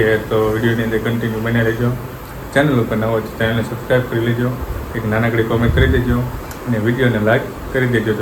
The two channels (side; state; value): both; identical; correlation 1.00